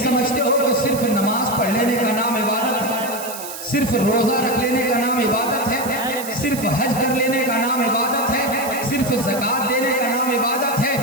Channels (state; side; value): noise; right; hiss, 10 dB below the sound